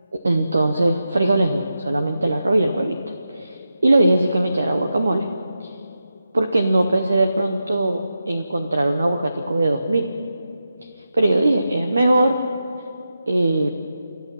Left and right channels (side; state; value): both; inverted; correlation -0.89